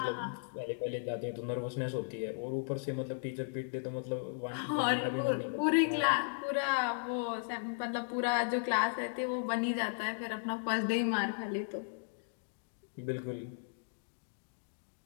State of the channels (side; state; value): right; silent; digital silence